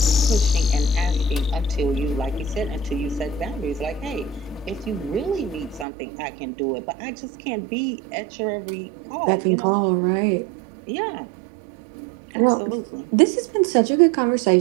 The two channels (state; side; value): drops out; left; at 5.9 s